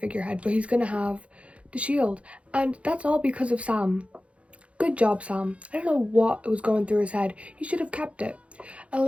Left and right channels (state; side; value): late; left; 0.062 ms